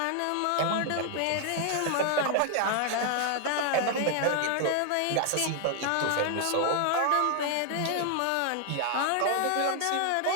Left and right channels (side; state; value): both; different; correlation 0.00